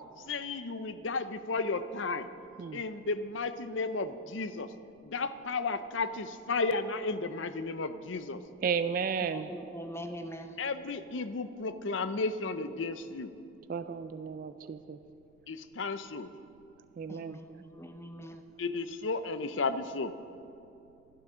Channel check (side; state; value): right; noise; rumble, 29 dB below the sound